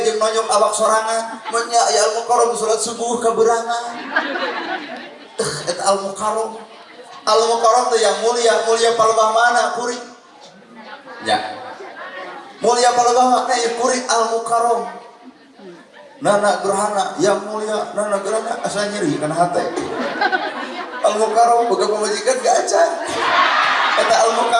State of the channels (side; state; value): both; identical; correlation 1.00